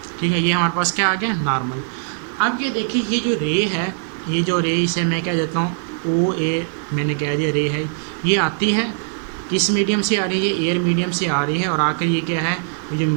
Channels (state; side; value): silent; left; digital silence